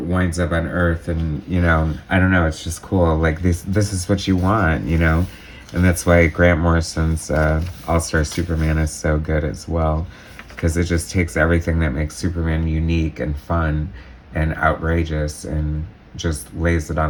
up on Earth, and, you know, I don't know, it's just cool. Like, this is what you want, you know? And that's why Grant Morrison's All-Star Superman is so good as well, because it just takes everything that makes Superman unique and fun and outrageous and just lays it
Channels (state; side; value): identical; both; correlation 1.00